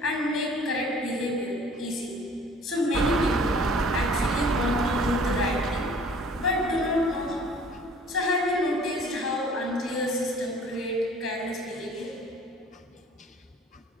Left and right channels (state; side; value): normal; both; correlation 0.51